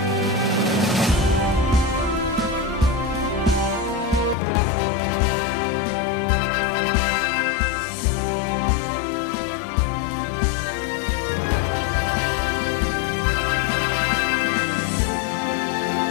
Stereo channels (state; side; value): drops out; right; at 4.4 s